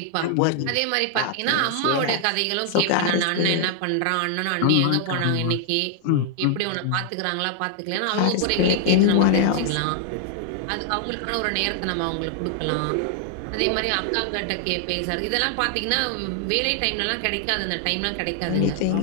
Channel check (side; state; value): both; different; correlation 0.00